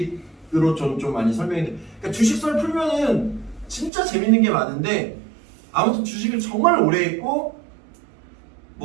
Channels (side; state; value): left; drops out; at 3.9 s